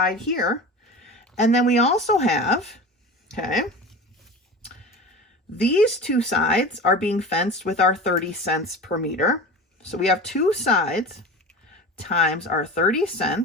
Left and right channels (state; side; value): normal; both; correlation 0.32